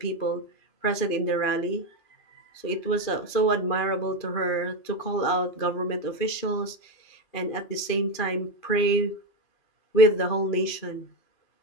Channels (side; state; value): right; late; 2.5 ms